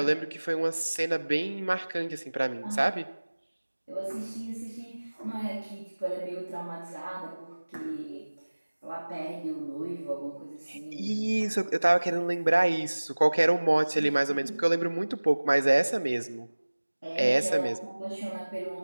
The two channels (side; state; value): both; inverted; correlation -1.00